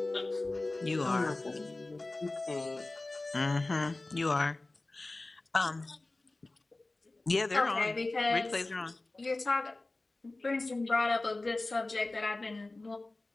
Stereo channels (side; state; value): right; quieter; 3.0 dB